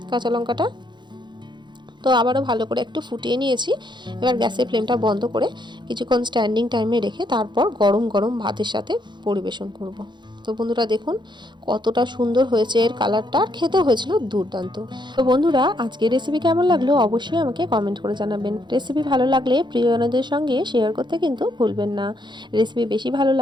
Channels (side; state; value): left; late; 0.22 ms